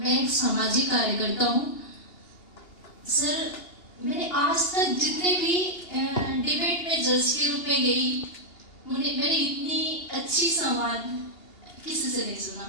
एक सामाजिक कार्यकर्ता हूँ। सर मैंने आज तक जितने भी डिबेट में जज के रूप में गई, मैंने इतनी अच्छी संवाद किसी से नहीं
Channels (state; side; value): late; right; 2.8 ms